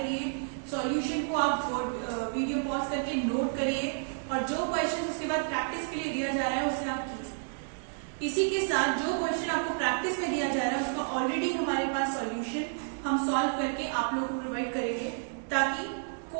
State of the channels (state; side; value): silent; left; digital silence